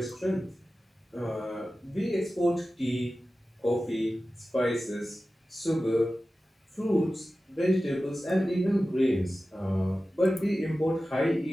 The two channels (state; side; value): normal; both; correlation 0.95